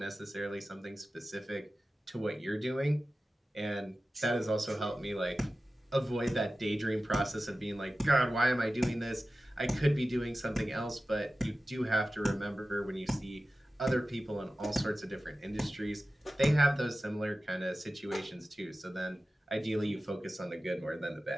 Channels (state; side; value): normal; both; correlation 0.95